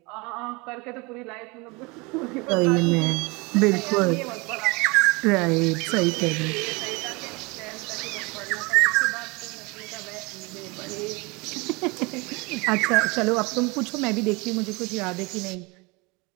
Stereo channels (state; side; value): quieter; left; 26.7 dB